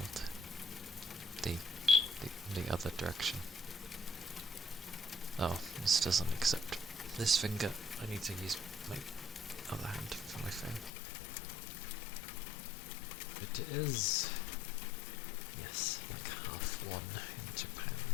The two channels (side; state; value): right; drops out; at 10.9 s